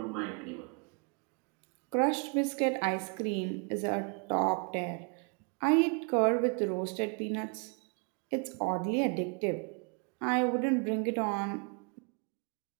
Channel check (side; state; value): left; quieter; 37.2 dB